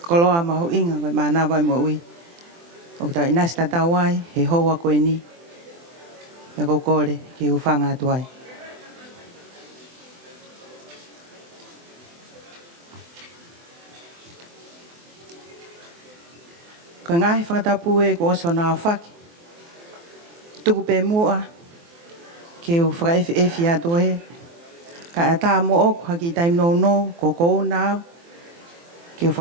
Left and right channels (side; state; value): left; late; 24 ms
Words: loa mahu inga koe mana wai mo ui. O kutau inasta tau ai he hoa koe ni. Me ko kore ki ufanga atu ai. Ko ngahi whakatapu e ko oso nā whaki. Tuku pe mua. Ke u whakaefi atu he. Ka e tā mo oku haki taim no no ko kou nāu. Ke u